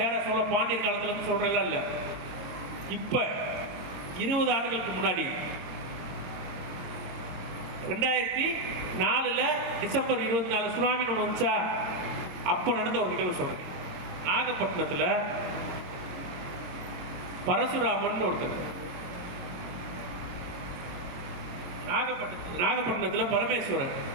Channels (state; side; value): late; left; 22 ms